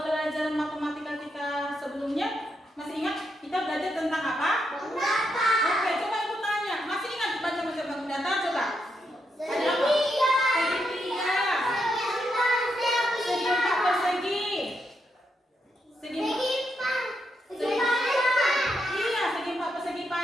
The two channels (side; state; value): both; normal; correlation 0.81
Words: matematika kita sebelumnya masih ingat kita belajar tentang apa? Bangun datar. Oke, coba ibu tanya, masih ingat baca-baca bangun datar? Coba. Ada apa? Segitiga. Segitiga. Segi empat persegi. Segi empat. Iya, segi empat persegi